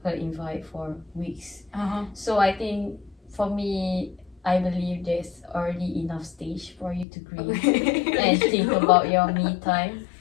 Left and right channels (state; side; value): drops out; right; at 7.1 s